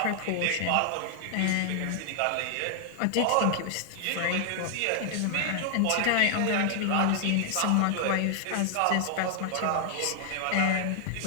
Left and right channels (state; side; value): different; both; correlation 0.00